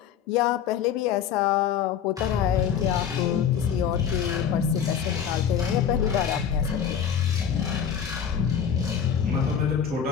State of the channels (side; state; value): right; quieter; 8.1 dB